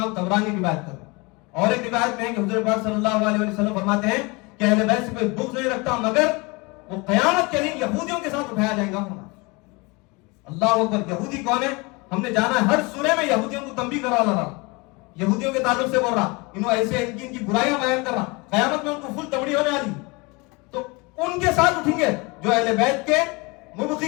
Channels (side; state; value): right; quieter; 26.8 dB